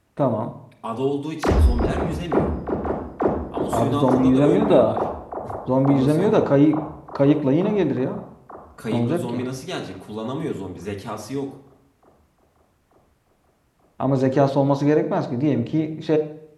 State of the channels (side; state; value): both; identical; correlation 1.00